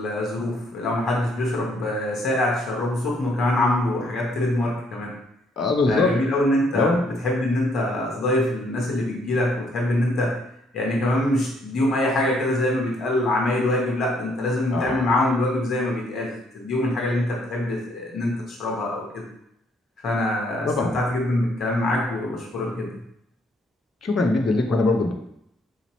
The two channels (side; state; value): both; normal; correlation 0.68